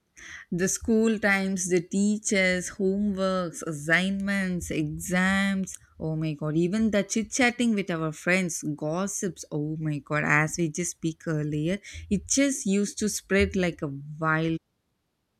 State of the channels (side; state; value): both; identical; correlation 1.00